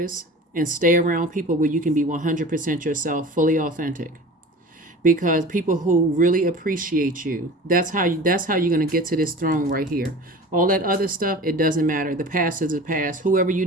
and stay around people where you can be 100% yourself, fully authentic. Because people who really appreciate you, that's how you're going to get to this throne right here. All that other stuff, it doesn't matter. The past is the past. Whoever you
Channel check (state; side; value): normal; both; correlation 0.38